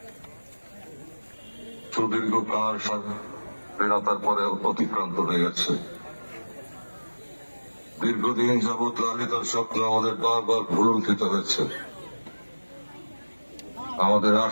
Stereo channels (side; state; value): both; inverted; correlation -1.00